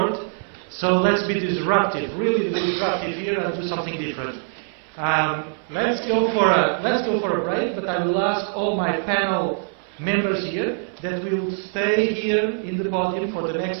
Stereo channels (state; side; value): silent; left; 59 dB below the other